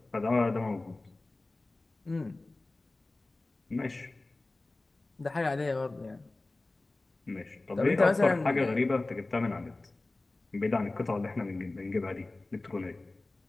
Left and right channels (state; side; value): quieter; right; 3.0 dB